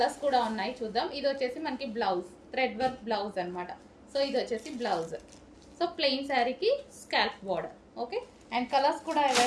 కూడా ఉన్నాయి, చూద్దాం. ఇది వచ్చేసి మనకి బ్లౌజ్, థ్రెడ్ వర్క్ బ్లౌజ్ అనమాట. సో ఇది వచ్చేసి బ్లౌజ్. సో ప్లెయిన్ శారీకి scalp border. Okay, and colours కూడా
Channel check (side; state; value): both; identical; correlation 1.00